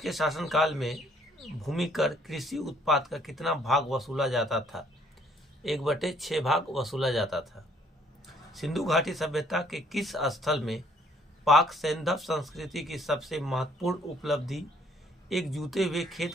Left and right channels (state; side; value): normal; both; correlation 0.63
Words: शासनकाल में भूमि कर कृषि उत्पाद का कितना भाग वसूला जाता था? 1/6 भाग वसूला जाता था। सिंधु घाटी सभ्यता के किस स्थल में पाक सैंधव संस्कृति की सबसे महत्वपूर्ण उपलब्धि एक जूते हुए खेत